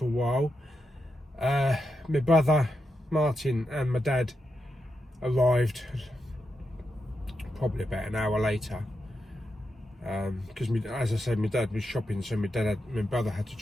a while. My brother Martin and my dad arrived probably about an hour later, because as I said, my dad was shopping, so my brother had to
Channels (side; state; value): both; normal; correlation 0.86